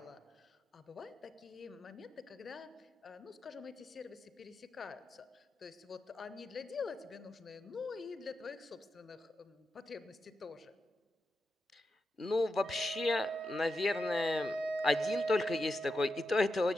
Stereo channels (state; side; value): normal; both; correlation 0.88